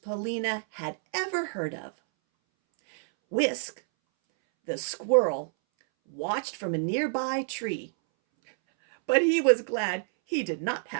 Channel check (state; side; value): silent; left; 59 dB below the other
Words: had ever heard of. Whisk, the squirrel, watched from a nearby tree, but he was glad he did not